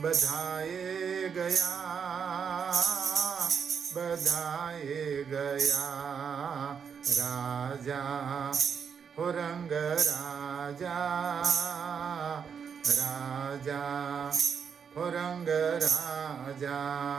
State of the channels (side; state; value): left; quieter; 6.9 dB